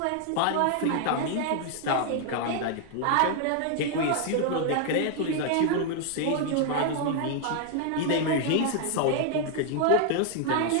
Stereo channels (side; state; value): both; different; correlation 0.00